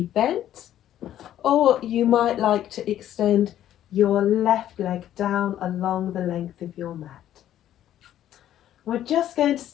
bent, or you might like to extend your left leg down along the length of your mat. We're just going to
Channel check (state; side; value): quieter; right; 11.8 dB